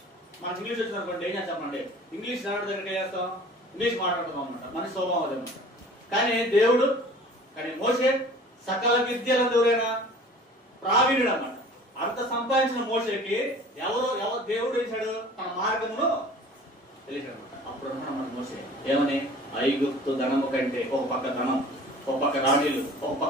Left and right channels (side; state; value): both; normal; correlation 0.46